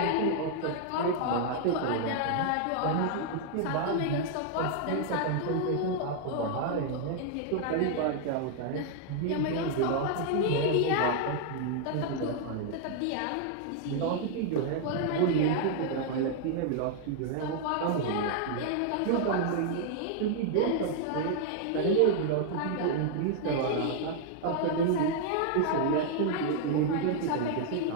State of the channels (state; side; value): different; both; correlation 0.00